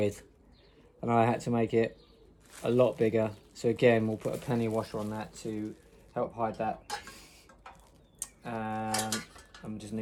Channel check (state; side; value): identical; both; correlation 1.00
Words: and I had to make it a lot bigger. So again, we'll put a penny washer on that to help hide that. I'm just